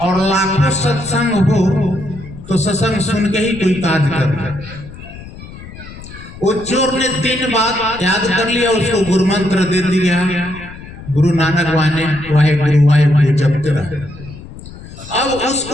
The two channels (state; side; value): noise; left; rumble, 15 dB below the sound